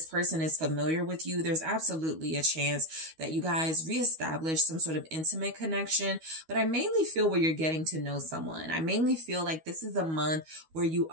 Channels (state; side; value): late; left; 12 ms